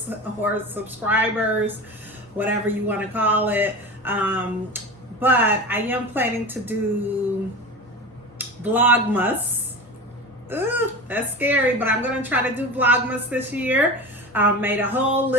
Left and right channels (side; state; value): both; normal; correlation 0.29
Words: or subscribers, whatever you want to call it. But I am planning to do Vlogmas. Ooh, that's scary, but I'm going to try to do Vlogmas this year. Made a whole